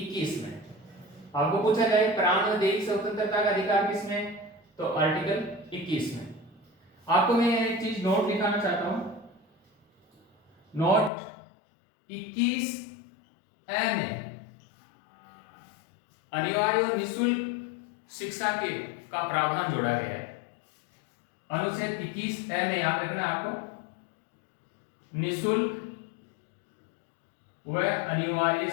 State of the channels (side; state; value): right; drops out; at 11.1 s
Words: में। आपको पूछा जाए प्राण और दैहिक स्वतंत्रता का अधिकार किसमें, तो आर्टिकल 21 में। आपको मैं एक चीज नोट दिखाना चाहता हूं, नोट 21 ए में अनिवार्य और निःशुल्क शिक्षा के का प्रावधान जोड़ा गया है। अनुच्छेद 21 ए में याद रखना आपको, निःशुल्क व अनिवार्य